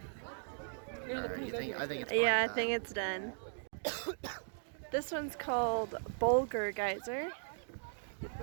Alright, I think it's Yeah, I fine, think it's done. This one's called Bulgur Geyser.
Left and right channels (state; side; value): silent; left; digital silence